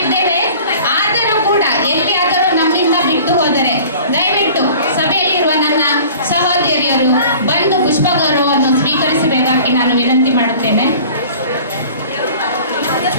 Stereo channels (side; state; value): both; inverted; correlation -0.45